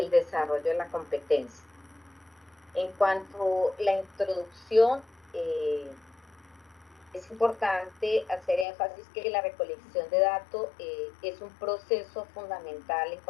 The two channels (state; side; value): drops out; right; at 8.7 s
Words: desarrollo de la competencia. En cuanto a la introducción, es importante hacer énfasis que la recolección de datos es un proceso fundamental en